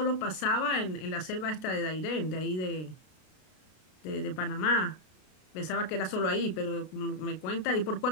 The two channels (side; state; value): right; late; 32 ms